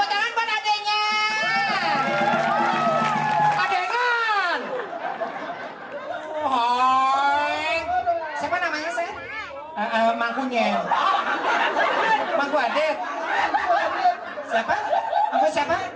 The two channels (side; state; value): both; identical; correlation 1.00